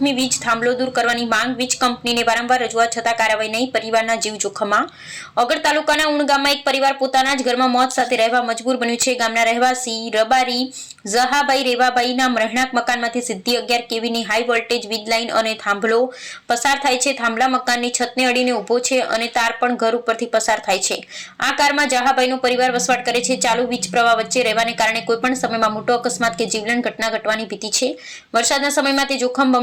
વીજ થાંભલો દૂર કરવાની માંગ વીજ કંપનીને વારંવાર રજૂઆત છતાં કાર્યવાહી નહીં. પરિવારના જીવ જોખમમાં. ઓગળ તાલુકાના ઉણ ગામમાં એક પરિવાર પોતાના જ ઘરમાં મોત સાથે રહેવા મજબૂર બન્યું છે. ગામના રહેવાસી રબારી ઝહાભાઈ રેવાભાઈના રહેણાંક મકાનમાંથી સીધી 11 કેવીની હાઈ વોલ્ટેજ વીજ લાઇન અને થાંભલો પસાર થાય છે. થાંભલા મકાનની છતને અડીને ઊભો છે અને તાર પણ ઘર ઉપરથી પસાર થાય છે. આ કારમાં ઝહાભાઈનો પરિવાર વસવાટ કરે છે. ચાલુ વીજ પ્રવાહ વચ્ચે રહેવાને કારણે કોઈપણ સમયમાં મોટો અકસ્માત કે જીવલેણ ઘટના ઘટવાની ભીતિ છે. વરસાદના સમયમાં તે જોખમ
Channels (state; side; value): identical; both; correlation 1.00